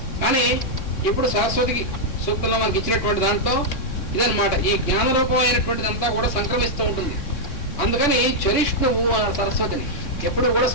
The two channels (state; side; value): late; right; 3.6 ms